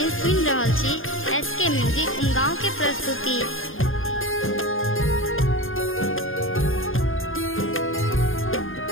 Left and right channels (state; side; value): late; right; 0.59 ms